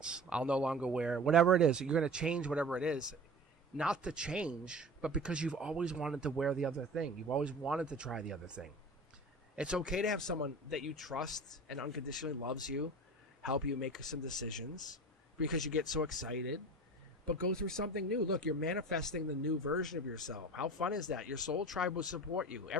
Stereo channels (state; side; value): normal; both; correlation 0.36